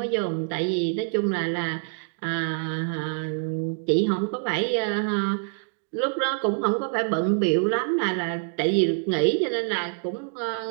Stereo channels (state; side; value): silent; left; 57 dB below the other